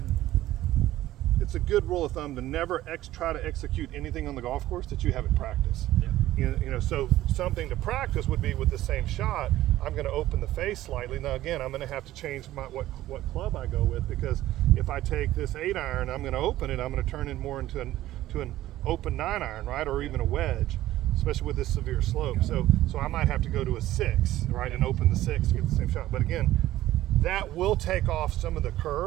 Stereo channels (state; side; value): quieter; left; 14.8 dB